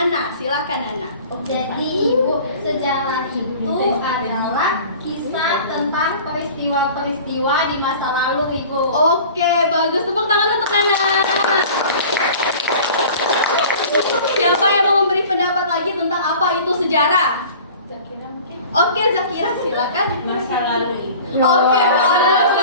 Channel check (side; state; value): both; inverted; correlation -0.43